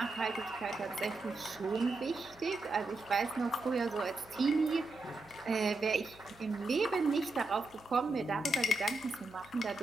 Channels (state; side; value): quieter; left; 3.1 dB